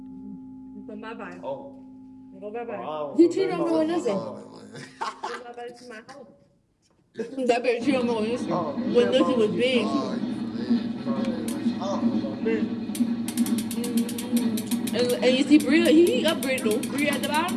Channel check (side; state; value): both; identical; correlation 1.00